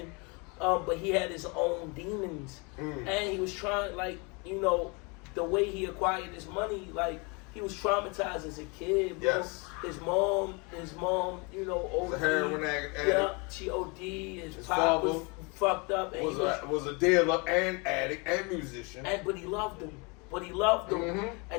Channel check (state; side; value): quieter; right; 30.3 dB